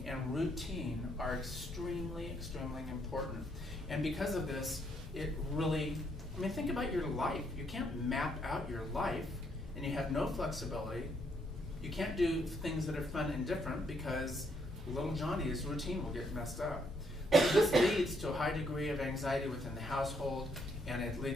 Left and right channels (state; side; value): normal; both; correlation 0.72